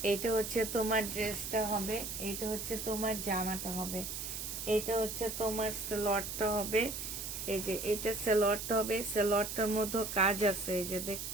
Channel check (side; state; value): right; noise; hiss, 5 dB below the sound